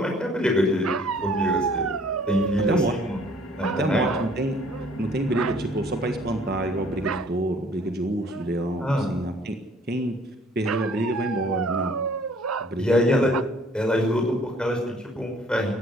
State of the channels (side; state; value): both; normal; correlation 0.57